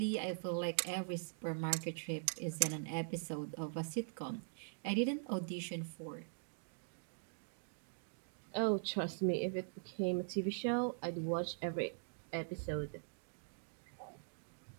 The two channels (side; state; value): left; silent; digital silence